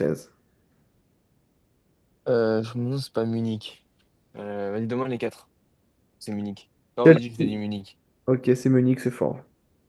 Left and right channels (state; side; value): identical; both; correlation 1.00